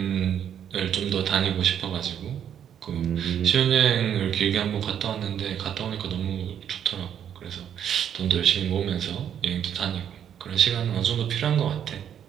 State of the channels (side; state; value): left; quieter; 9.2 dB